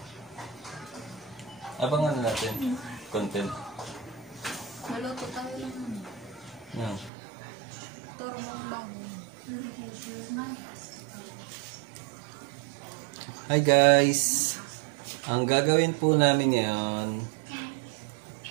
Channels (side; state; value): left; drops out; at 7.1 s